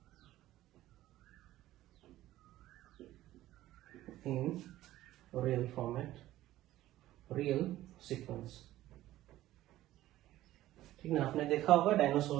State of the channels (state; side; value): quieter; left; 14.9 dB